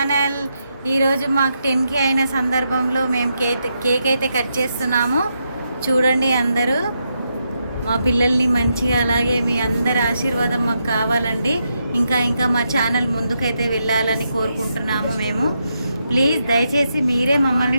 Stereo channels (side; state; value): both; inverted; correlation -0.83